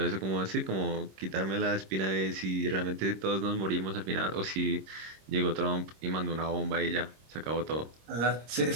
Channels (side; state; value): left; late; 26 ms